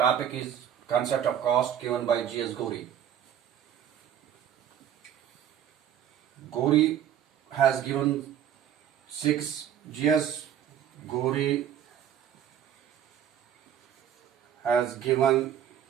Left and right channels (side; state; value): left; quieter; 9.7 dB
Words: is concept of cost given by G.S. Gori. Gori has given G.S. Gori has given